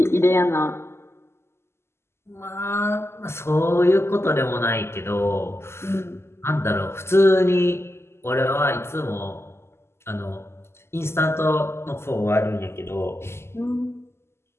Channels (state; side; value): late; right; 0.12 ms